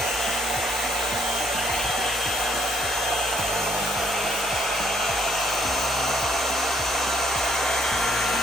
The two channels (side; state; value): both; normal; correlation 0.68